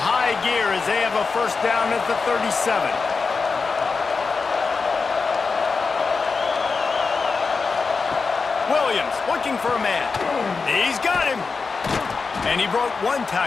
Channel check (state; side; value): quieter; right; 4.6 dB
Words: gear as they have a first down at the 37. Williams looking for a man. He's got him. And he broke one